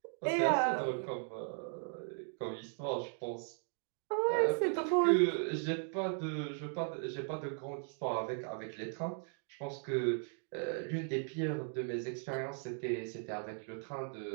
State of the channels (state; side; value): silent; left; 53 dB below the other